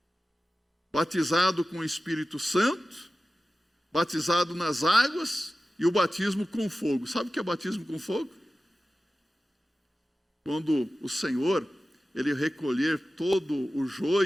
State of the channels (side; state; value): both; normal; correlation 0.95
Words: Batizado com o Espírito Santo, batizado nas águas e o batismo com fogo. Sabe o que é batismo com fogo? Quando o Senhor, Ele recolher todo o